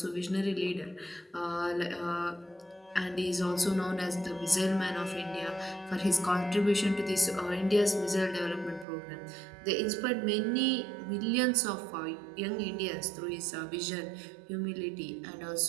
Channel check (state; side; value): drops out; left; at 8.8 s